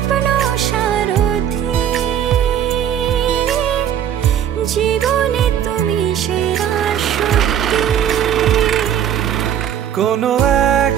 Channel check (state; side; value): quieter; left; 9.8 dB